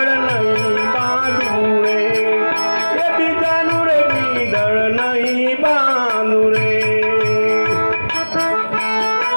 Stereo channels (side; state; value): both; inverted; correlation -1.00